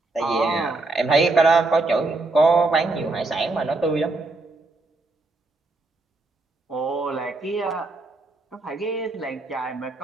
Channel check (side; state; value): left; quieter; 3.2 dB